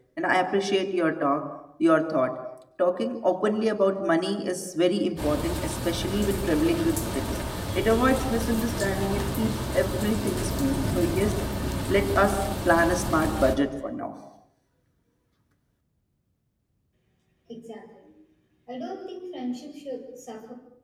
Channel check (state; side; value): identical; both; correlation 1.00